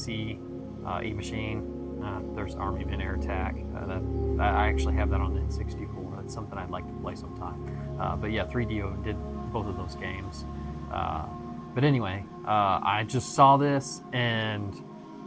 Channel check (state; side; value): identical; both; correlation 1.00